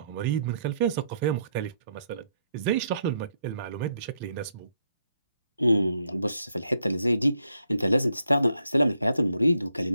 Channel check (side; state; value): both; inverted; correlation -0.75